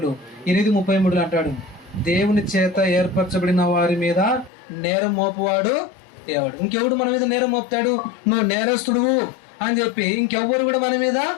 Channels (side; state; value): right; drops out; at 4.5 s